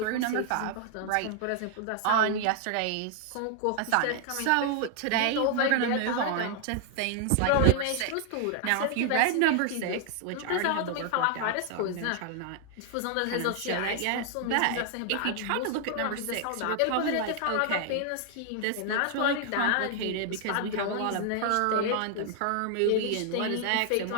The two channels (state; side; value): different; both; correlation 0.00